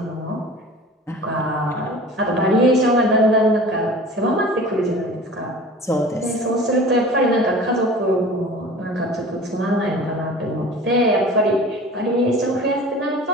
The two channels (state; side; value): normal; both; correlation 0.41